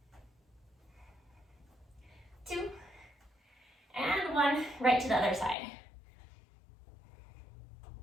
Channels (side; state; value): right; drops out; at 5.6 s